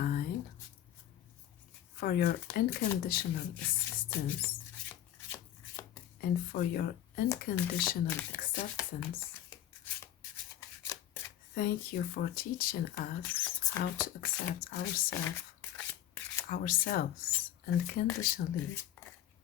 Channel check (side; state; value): right; quieter; 11.7 dB